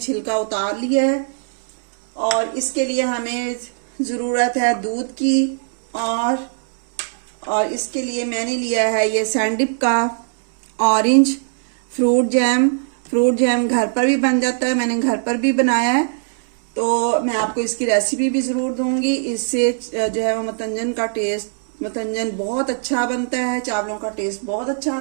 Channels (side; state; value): left; silent; digital silence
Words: उतार लिया है। और इसके लिए हमें ज़रूरत है दूध की। और इसके लिए मैंने लिया है ये सैंडिप का ऑरेंज फ्रूट जैम घर पर भी बन जाता है, मैंने घर पर भी बनाया है। तो मैं आपको इसकी रेसिपी भी ज़रूर दूंगी। इससे जो है वो मतंजन बहुत अच्छा बनता है, चावलों का टेस्ट बहुत अच्छा